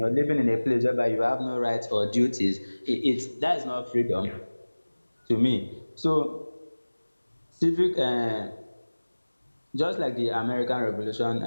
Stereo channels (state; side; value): inverted; both; correlation -1.00